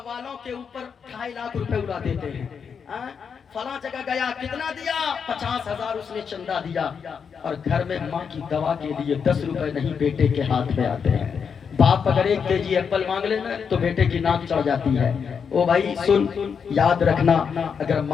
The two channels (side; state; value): right; quieter; 6.5 dB